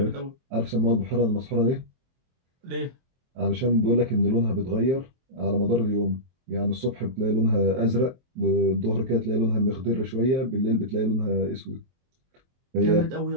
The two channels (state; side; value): late; left; 23 ms